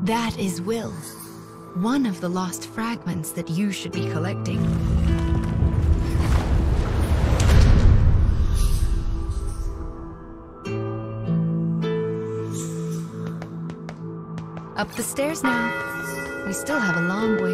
That is Will, one of the lost fragments that you should be collecting. Up the stairs now. We still have a long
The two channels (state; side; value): identical; both; correlation 1.00